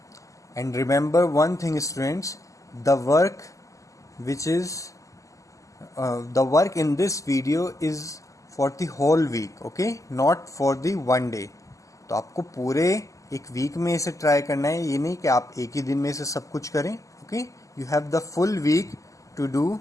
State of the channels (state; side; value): late; right; 0.16 ms